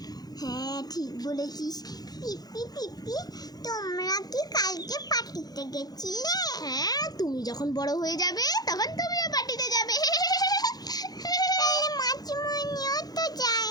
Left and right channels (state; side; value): late; right; 0.19 ms